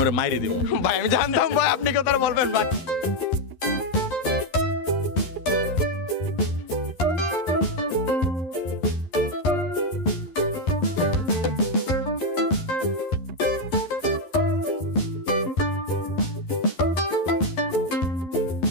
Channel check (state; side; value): late; right; 11 ms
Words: ওরা মাইরে দেবো। ভাই আমি জানতাম ভাই আপনি কথা বলবেন ভাই।